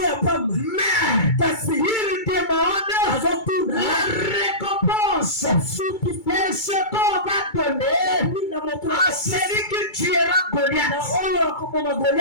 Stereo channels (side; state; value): right; late; 2.3 ms